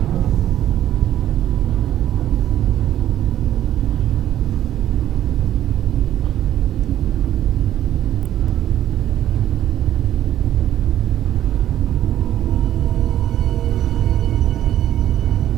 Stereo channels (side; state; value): left; quieter; 12.0 dB